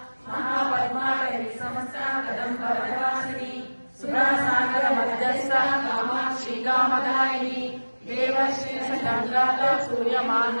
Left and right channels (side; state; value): both; inverted; correlation -1.00